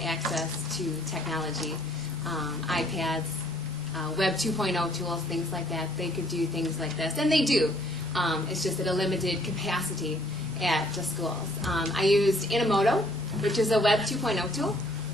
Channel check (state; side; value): normal; both; correlation 0.62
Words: access to technology, iPads, Web 2.0 tools, things like that, they could do things like this. And they do. It's just at a limited capacity at the schools. I used Inamoto, which is a Web 2.0 tool.